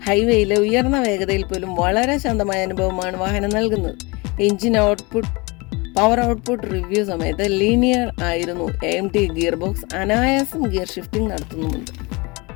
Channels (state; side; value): quieter; right; 26.3 dB